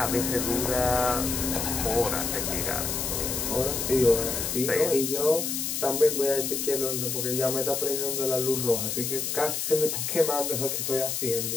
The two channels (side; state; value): left; noise; hiss, 2 dB below the sound